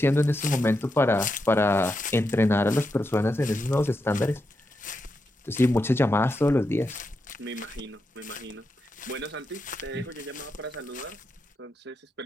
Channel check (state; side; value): normal; both; correlation 0.86